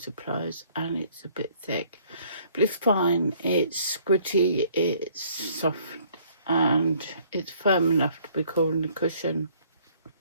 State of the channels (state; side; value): inverted; both; correlation -0.60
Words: and it's a bit thick. But it's fine, it's squidgy, it's soft and it's firm enough to be called a cushion.